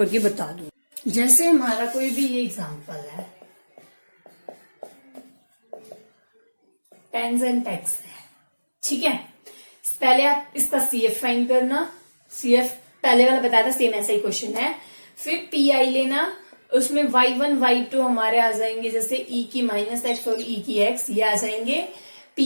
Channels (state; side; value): inverted; both; correlation -1.00